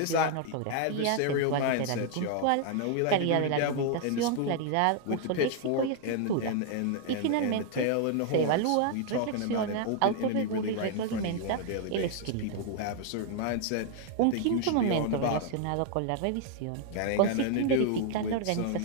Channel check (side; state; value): both; different; correlation 0.00